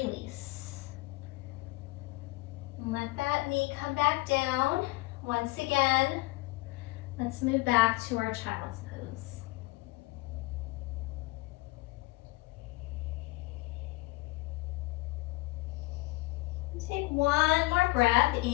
And let that knee come back down. Once again, let's move back to our child's pose. Take one more breath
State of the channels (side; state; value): right; quieter; 22.4 dB